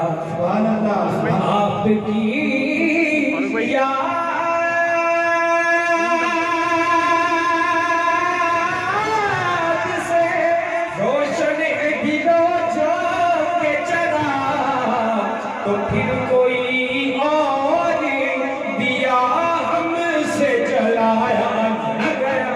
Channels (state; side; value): identical; both; correlation 1.00